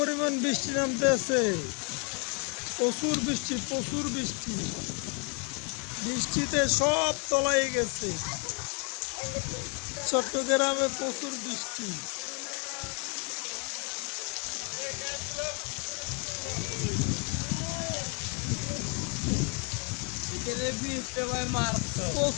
বৃষ্টি নামতে আছে। প্রচুর বৃষ্টি, প্রচুর বৃষ্টি। বৃষ্টিতে সব তলায় গেছে। চট্টগ্রামে প্রচুর বৃষ্টি।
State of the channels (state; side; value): quieter; right; 36.3 dB